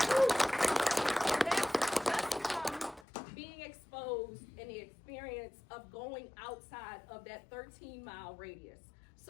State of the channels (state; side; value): drops out; right; at 3.1 s